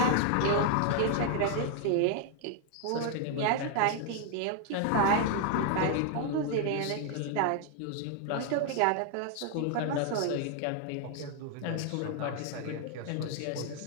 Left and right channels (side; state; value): both; different; correlation 0.00